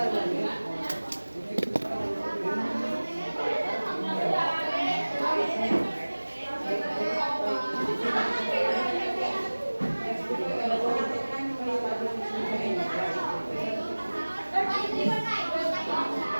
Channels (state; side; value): inverted; both; correlation -1.00